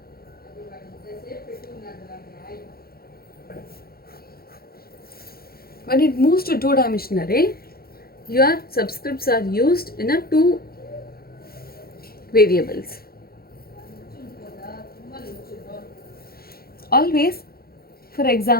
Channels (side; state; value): right; late; 0.44 ms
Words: When it moves to two-dimensional array, your subscripts are used in a two variables. Always, for